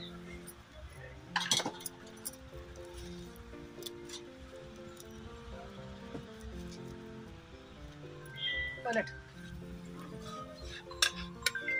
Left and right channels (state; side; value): identical; both; correlation 1.00